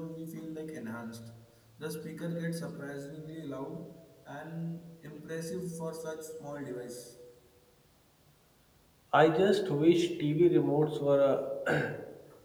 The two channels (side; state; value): both; identical; correlation 1.00